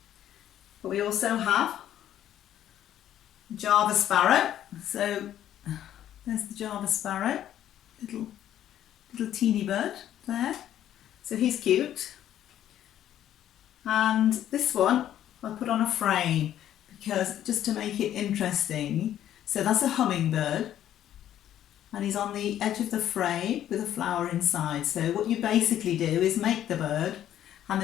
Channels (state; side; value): quieter; right; 11.4 dB